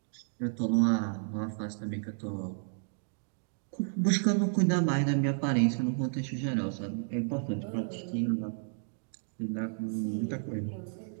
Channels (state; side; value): silent; left; digital silence